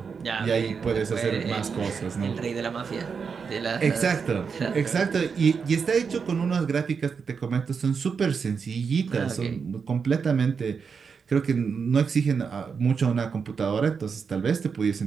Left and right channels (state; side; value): quieter; left; 5.8 dB